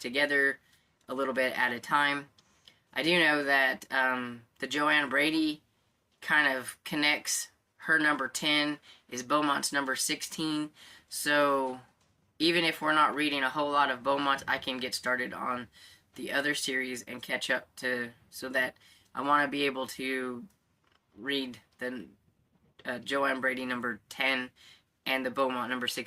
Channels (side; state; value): both; identical; correlation 1.00